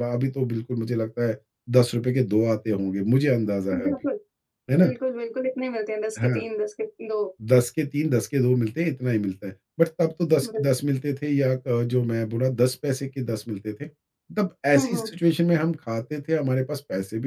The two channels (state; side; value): identical; both; correlation 1.00